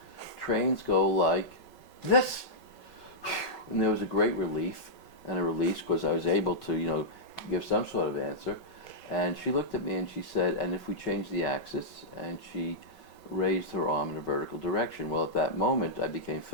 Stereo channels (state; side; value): late; right; 5.3 ms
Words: trains go like this. And there was a great relief and a release because I was able to, give some sort of answer. And she looked at me and she said, and if we change the axis, and she raised her arm in a vertical direction. Well, at that moment, I became